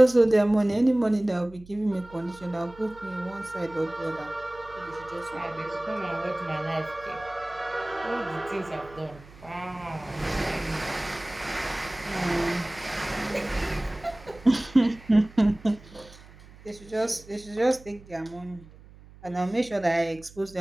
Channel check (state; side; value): noise; right; hum, 21 dB below the sound